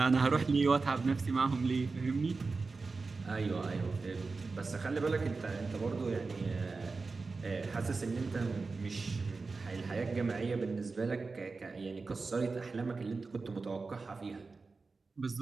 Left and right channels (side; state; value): left; quieter; 4.1 dB